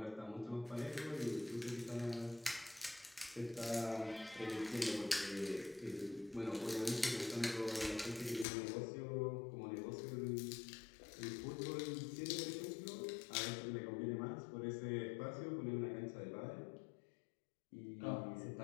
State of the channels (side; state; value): right; drops out; at 8.5 s